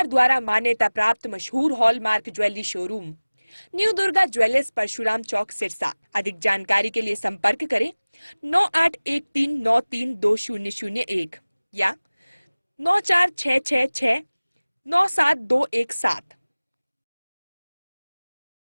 द्वारा मान्यता प्राप्त मशहूर hallmark jewellery showroom new Durga jewellers, Parshuram Chowk, Sirsa. अधिक जानकारी के लिए संपर्क करें 9813932001 या 9466697217।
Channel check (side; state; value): both; inverted; correlation -0.99